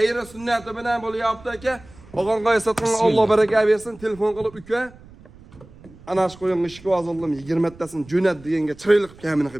sunnati bilan bo'lyapti aka. Og'onqoy sotgan Alloh baraka bersin, telefon qilib uka. Ana shu qo'yimni ishga hozirladim 20 tasini jo'nat deganga chiroyli qilib kamini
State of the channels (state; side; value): noise; right; rumble, 22 dB below the sound